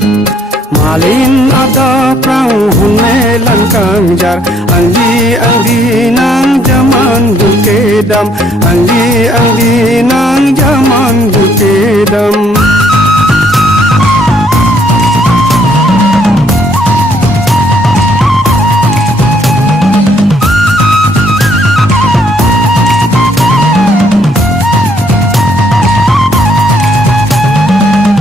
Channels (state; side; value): normal; both; correlation 0.66